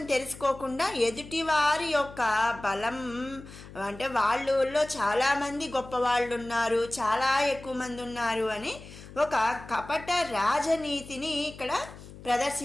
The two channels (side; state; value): left; noise; hum, 16 dB below the sound